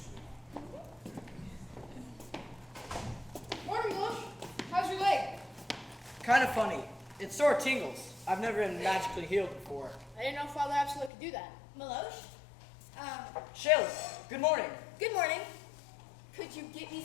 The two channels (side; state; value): right; drops out; at 11.1 s